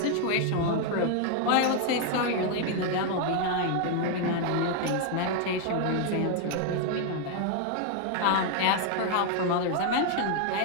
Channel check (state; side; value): different; both; correlation 0.00